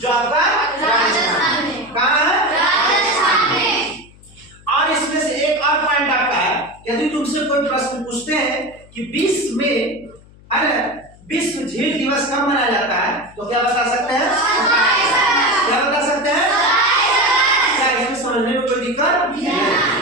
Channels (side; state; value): left; noise; hum, 25 dB below the sound